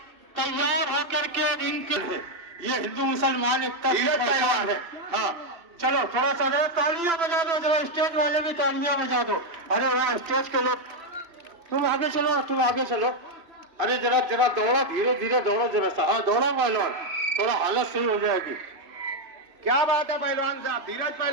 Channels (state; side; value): late; left; 3.0 ms